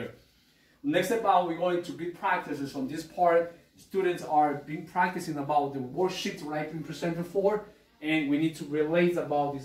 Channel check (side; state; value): both; identical; correlation 1.00